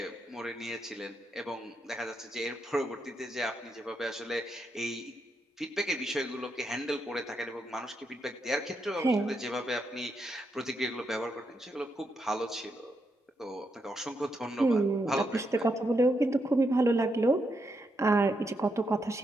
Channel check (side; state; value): both; normal; correlation 0.81